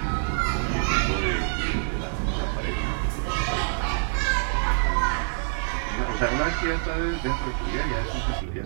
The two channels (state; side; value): silent; left; 61 dB below the other